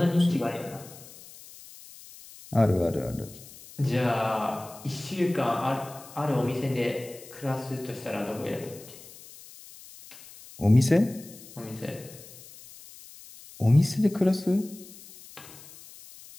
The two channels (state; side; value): noise; left; hiss, 19 dB below the sound